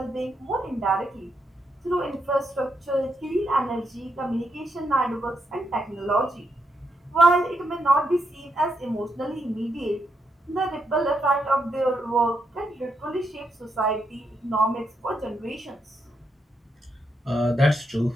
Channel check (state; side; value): normal; both; correlation 0.80